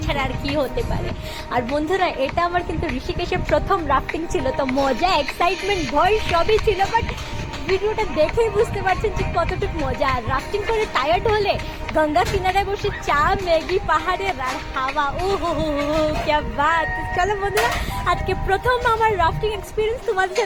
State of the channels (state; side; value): identical; both; correlation 1.00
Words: ছাড়া আর কি হতে পারে। আর বন্ধুরা, এটা আমার কিন্তু ঋষিকেশের প্রথম রাফটিং ছিল, তো মজা, এক্সাইটমেন্ট, ভয় সবই ছিল, বাট ভিডিওটা দেখেই বুঝতে পারছেন যে কতটুকু মজা। আর রাফটিং করে টায়ার্ড হলে গঙ্গা কিনারায় বসে চা, ম্যাগি, পাহাড়ের আর হাওয়া, ও হো হো হো, ক্যা বাত। চলো বন্ধুরা, আজকে প্রথম আমার রাফটিং এক্সপিরিয়েন্স তোমাদের